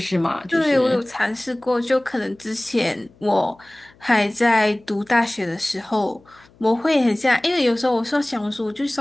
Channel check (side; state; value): left; noise; hum, 29 dB below the sound